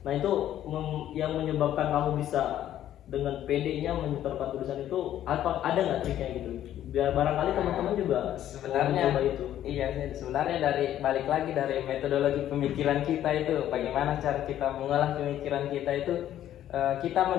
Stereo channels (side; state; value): right; quieter; 11.8 dB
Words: Nah itu yang menyebabkan kamu bisa dengan PD-nya menyetorkan tulisan itu, ada nggak triknya gitu? Biar barangkali teman-teman juga sebenarnya coba itu. Iya, sebenarnya dari balik lagi dari metodologi pemikiran kita itu, bagaimana cara kita mengolah pemikiran kita itu. Kita